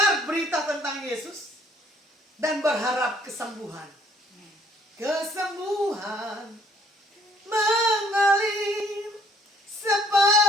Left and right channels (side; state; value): both; normal; correlation 0.63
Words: berita tentang Yesus dan berharap kesembuhan. Kesembuhan mengalir